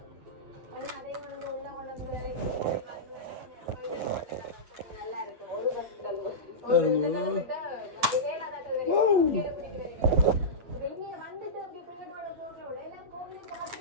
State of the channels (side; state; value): left; late; 8.9 ms